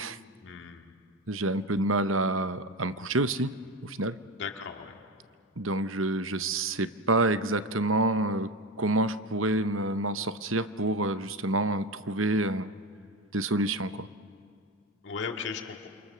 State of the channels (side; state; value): both; normal; correlation 0.20